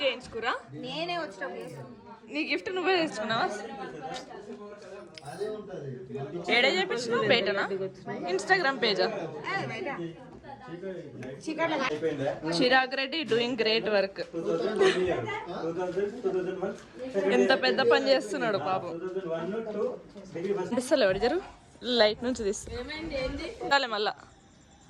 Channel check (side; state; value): both; identical; correlation 1.00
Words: చేయించుకురా? నేనే వచ్చినప్పుడు నీ గిఫ్ట్ నువ్వే తెచ్చుకున్నావా? ఏడే చేయించినావు? బయటనా? ఇన్స్టాగ్రామ్ పేజా? Chirag Reddy doing great work. ఎంత పెద్ద పని చేస్తున్నాడు పాపం. తీస్తలే ఎవరు జరు లైట్ నుంచి తీస్తా మళ్ళా.